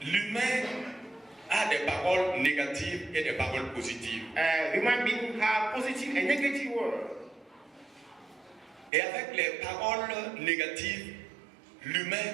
L'humain a des paroles négatives et des paroles positives. Human beings have positive and negative words. Et avec les paroles négatives,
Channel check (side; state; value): left; drops out; at 8.9 s